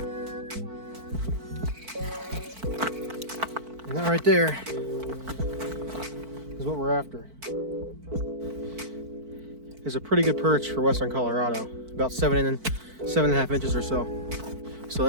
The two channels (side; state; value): left; late; 4.5 ms